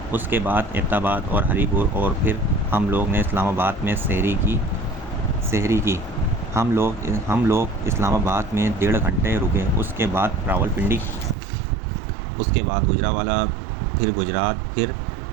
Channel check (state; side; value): drops out; left; at 11.4 s